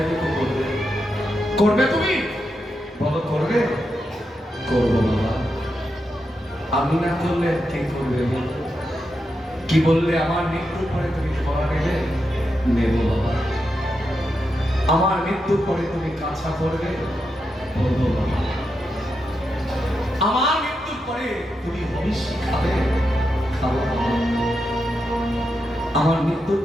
করবে। করবে তুমি? বলো করবে? করবো বাবা। আমি না করলে কে করবে? কি বললে আমার মৃত্যুর পরে তুমি ধরা নেবে? নেব বাবা। আমার মৃত্যুর পরে তুমি কাছা করবে? বলবো বাবা। আমার মৃত্যুর পরে তুমি হবিষ্যি খাবে? খাবো বাবা। আমার মৃত্যুর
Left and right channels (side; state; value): both; normal; correlation 0.86